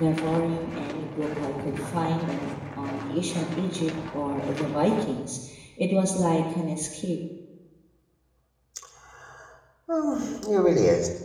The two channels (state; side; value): identical; both; correlation 1.00